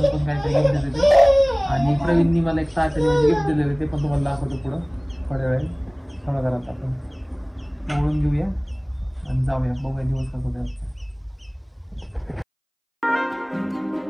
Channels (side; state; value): both; identical; correlation 1.00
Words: काय गिफ्ट देते ते. आणि प्रवीणनी मला एक साखळी गिफ्ट दिलेलं, ते पण तुम्हाला दाखवतो पुढं थोड्या वेळ. थोडा घरात आपण ओळून घेऊया आणि जाऊया, बघूया दिवस कसा होता.